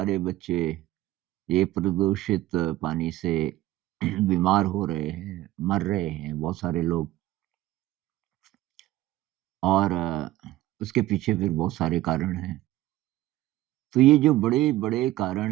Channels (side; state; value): left; quieter; 15.8 dB